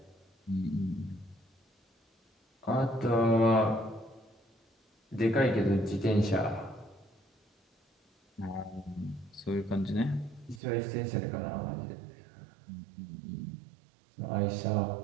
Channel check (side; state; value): left; drops out; at 10.6 s